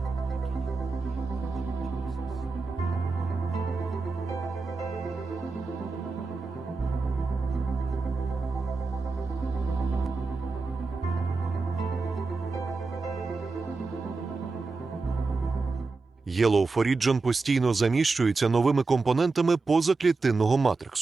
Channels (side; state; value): left; quieter; 4.0 dB